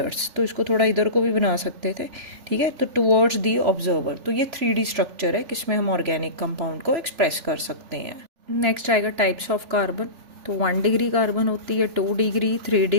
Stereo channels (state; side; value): late; left; 3.4 ms